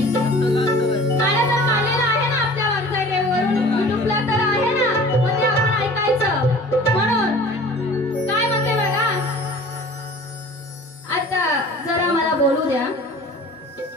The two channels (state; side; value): normal; both; correlation 0.45